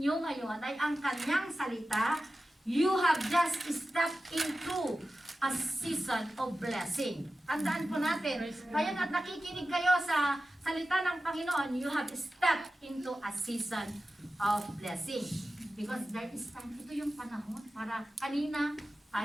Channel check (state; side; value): normal; both; correlation 0.94